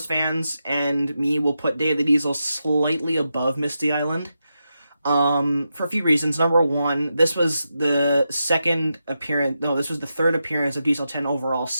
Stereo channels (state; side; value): inverted; both; correlation -0.87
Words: fans and me will put Day of the Diesels slightly above Misty Island for a few reasons. Number one, this was the third appearance of Diesel 10 overall,